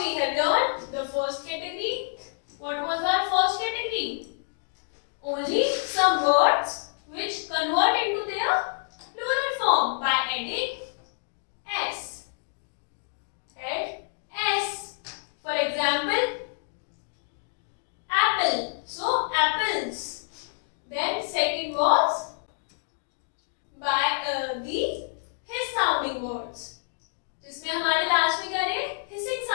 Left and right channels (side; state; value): right; silent; digital silence